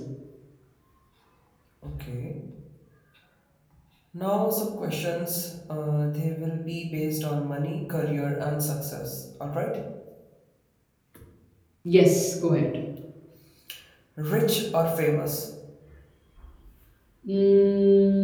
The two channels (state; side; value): identical; both; correlation 1.00